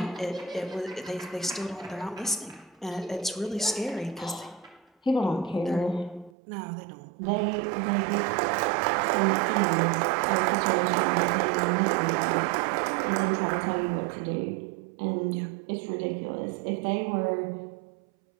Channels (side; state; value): left; drops out; at 6.3 s